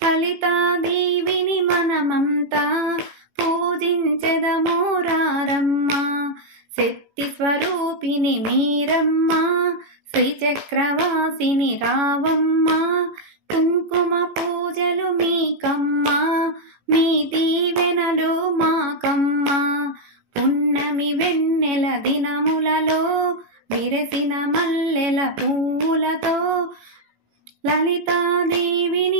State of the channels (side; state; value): left; late; 18 ms